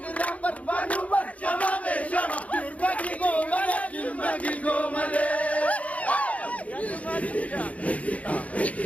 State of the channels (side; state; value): right; late; 0.067 ms